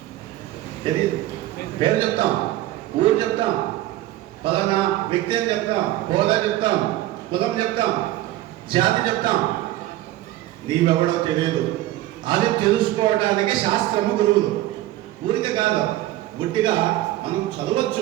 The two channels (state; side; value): quieter; left; 15.3 dB